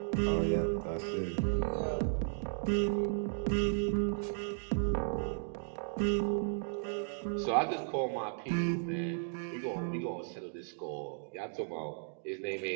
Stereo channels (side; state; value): left; silent; digital silence